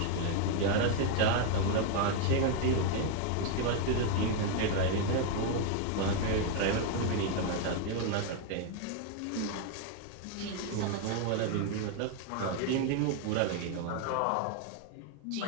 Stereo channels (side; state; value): both; different; correlation 0.01